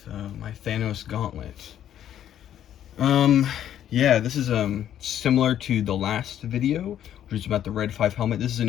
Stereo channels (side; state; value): right; quieter; 10.7 dB